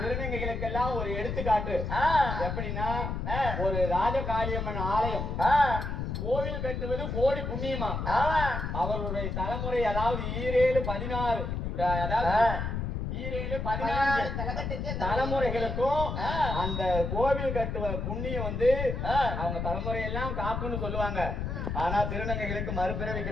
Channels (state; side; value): noise; left; rumble, 3 dB below the sound